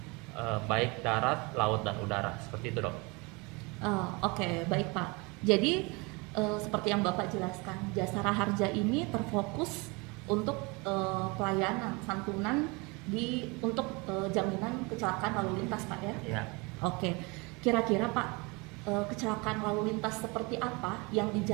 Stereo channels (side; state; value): left; quieter; 27.6 dB